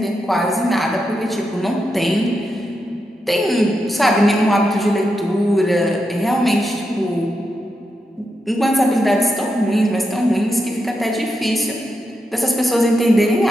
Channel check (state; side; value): normal; both; correlation 0.86